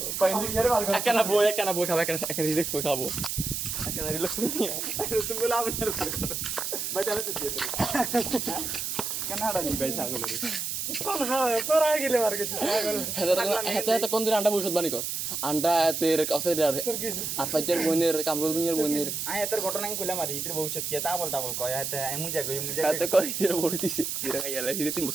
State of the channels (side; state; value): right; noise; hiss, 3 dB below the sound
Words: একখানা বই খাবো একটা রিল্যাক্স বই খাবো একটা রিল্যাক্স বই নিয়ে তুমি বলে আমি আর পার করো ভাই তাহলে তো দিয়ে দেবে কেন হাড়া নি ভাই ছাগলের কোন হ্যাঁ তোরা গেলে মার গেছিস হেতে কোন দিন আন্ডা ভবিষ্যৎ বাণী কর আন্ডা এতের কাছে তোর কিছু আর ফাইজার বোনের কামরুল মিয়ার বোনের আয় এত ঘটনা আমি কইলাম আর ইতির ভবিষ্যৎ কি তা বলতা বল কয় এত মুজা গই এতে কই এর বড় দিছে এরা খাইলা দিতে 3